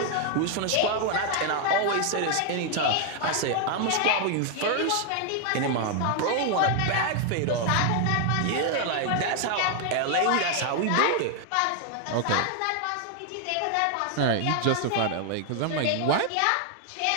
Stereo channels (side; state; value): both; different; correlation 0.00